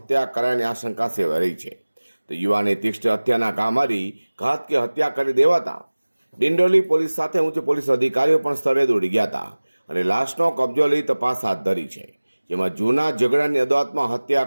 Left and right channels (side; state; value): both; inverted; correlation -1.00